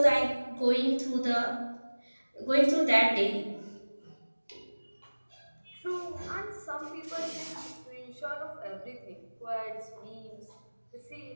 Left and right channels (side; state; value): both; inverted; correlation -1.00